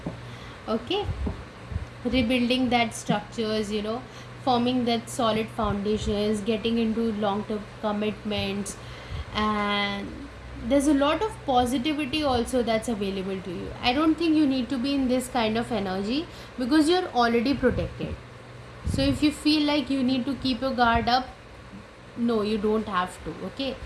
Okay, rebuilding that structures, forming that solid foundations, getting into long term commitments, and there's a lot of positivity also that's available to you. I don't think you need to be in this kind of energy because you're already protected. So if you feel like you need to keep your guard up, no, you don't have to. Okay,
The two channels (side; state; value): both; identical; correlation 1.00